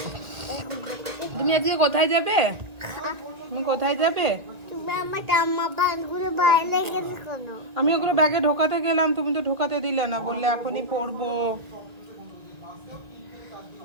তুমি আজকে কোথায় যাবে? তুমি কোথায় যাবে? তুমি আমার জামা প্যান্টগুলো বাইরে গেছে কেন? আমি ওগুলো ব্যাগে ঢোকাতে গেলাম, তুমি তো ঢোকাতে দিলে না, বললে এখনই পরবো।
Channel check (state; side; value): late; left; 1.8 ms